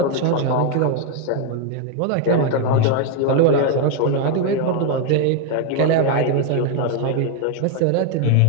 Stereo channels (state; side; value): different; both; correlation 0.01